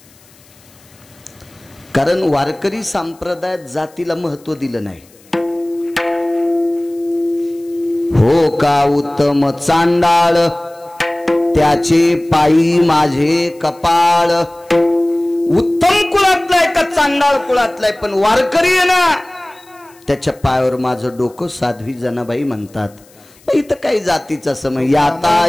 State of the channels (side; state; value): left; noise; hiss, 28 dB below the sound